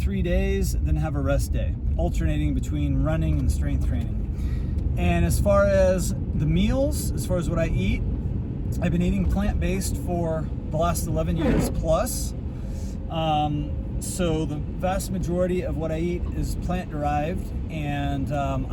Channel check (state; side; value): identical; both; correlation 1.00